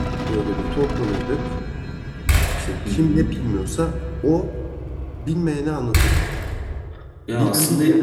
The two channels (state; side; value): identical; both; correlation 1.00